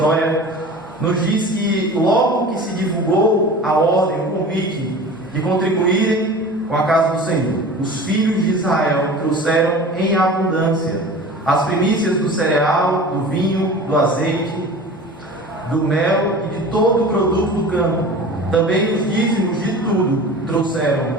nos diz que logo que se divulgou a ordem, o convite de contribuírem com a casa do Senhor, os filhos de Israel trouxeram em abundância as primícias do cereal, do vinho, do azeite, do mel e de todo o produto do campo. Também os dízimos de tudo trouxeram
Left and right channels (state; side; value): normal; both; correlation 0.38